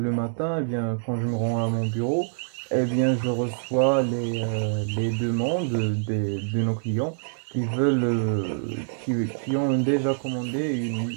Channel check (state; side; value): silent; left; digital silence